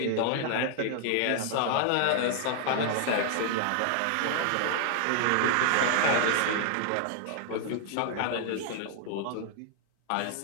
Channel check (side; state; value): both; different; correlation 0.00